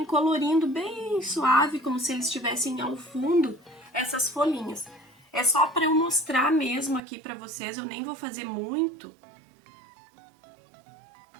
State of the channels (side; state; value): left; drops out; at 7.0 s